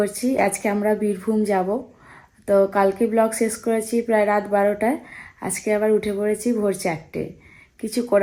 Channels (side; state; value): both; identical; correlation 1.00